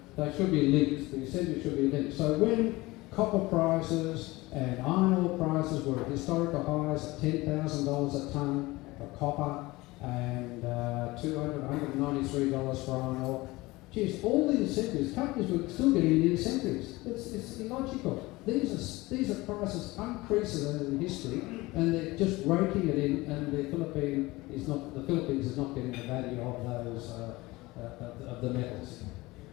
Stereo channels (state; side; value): quieter; right; 20.9 dB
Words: they should be linked. The incentives should be linked. So when copper prices and iron ore prices were at historical highs at $10,000 a tonne for copper and $193 for iron ore, geez, all the incentives, companies were still getting the incentives. It's illogical. these are prices unprecedented in history, and they're just raking it in, and the Philippines is not getting the value of those of the metals.